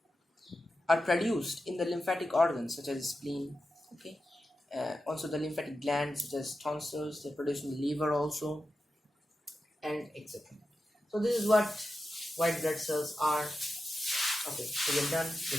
are produced in the lymphatic organs such as spleen. Okay, also the lymphatic glands such as tonsils, they produce in the liver also, and etc. So this is what white blood cells are. Okay, so we're done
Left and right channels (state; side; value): normal; both; correlation 0.91